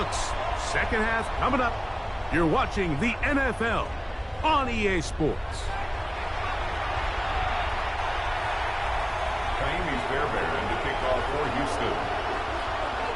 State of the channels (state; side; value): identical; both; correlation 1.00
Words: 2nd half coming up. You're watching the NFL on EA Sports. Miami's Bearbear to kick off for Houston.